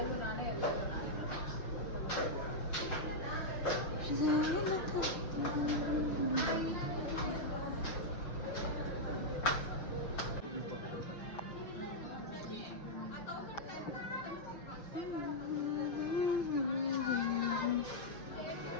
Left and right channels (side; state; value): right; late; 5.9 ms